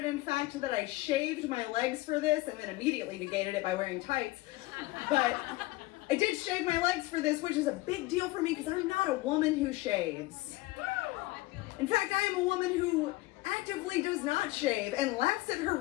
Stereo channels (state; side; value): quieter; right; 20.2 dB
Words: in fact, that I shaved my legs for this and then immediately negated it by wearing tights. But I did shave my legs for this, which is a big deal for me because I'm not a woman who shaves. In fact, I am a woman who actively does not shave and laughs at her